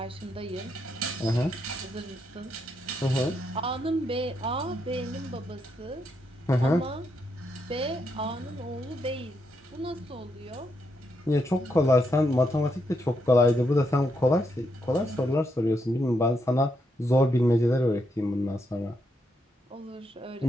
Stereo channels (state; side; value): normal; both; correlation 0.79